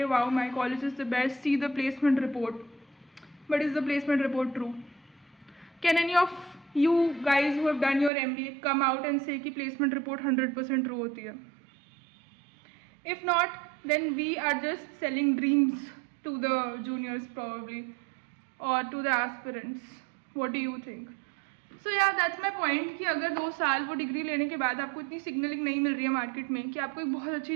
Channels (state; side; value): drops out; left; at 8.1 s